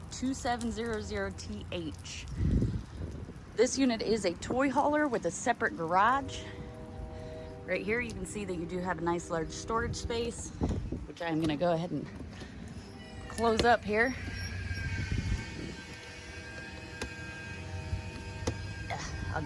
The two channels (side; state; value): both; identical; correlation 1.00